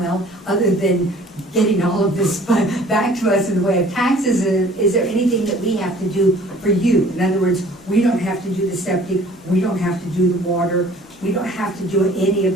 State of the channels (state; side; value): normal; both; correlation 0.52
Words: other than getting all of this back to us in the way of taxes, is there anything that we have to do for you? In other words, we don't have to do the septic, we don't have to do the water, we don't have to do any of